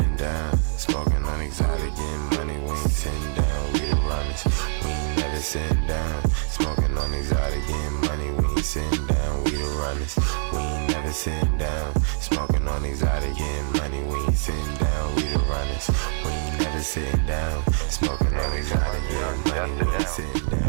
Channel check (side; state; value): left; silent; digital silence